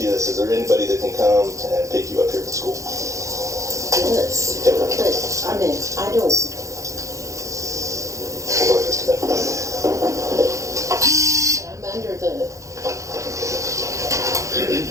you this, is there anybody that can come and pick you up here from school? Yes, but I mean, I don't. Hold on just a minute. I'm under the.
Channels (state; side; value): late; left; 0.15 ms